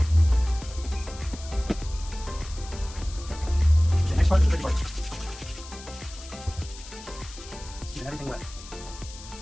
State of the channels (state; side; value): noise; left; hiss, 16 dB below the sound